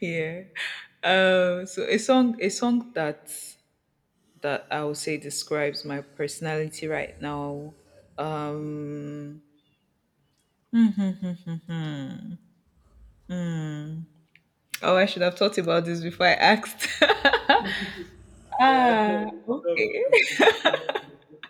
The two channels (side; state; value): both; identical; correlation 1.00